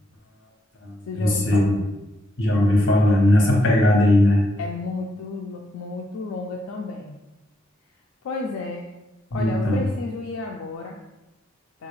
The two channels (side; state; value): both; normal; correlation 0.78